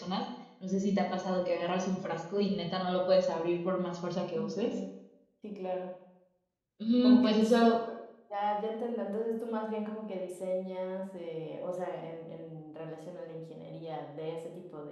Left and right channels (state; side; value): identical; both; correlation 1.00